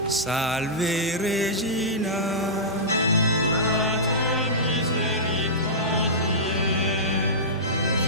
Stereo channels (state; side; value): normal; both; correlation -0.16